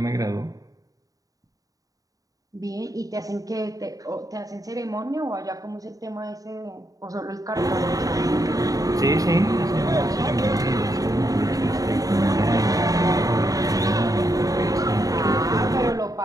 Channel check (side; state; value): left; late; 0.17 ms